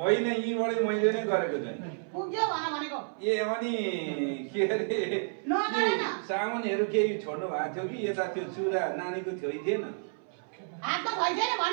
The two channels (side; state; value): left; silent; 58 dB below the other